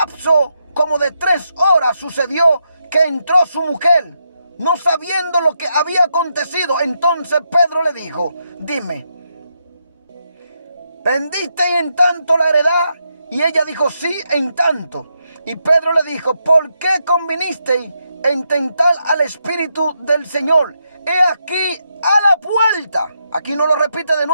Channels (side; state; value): both; inverted; correlation -0.81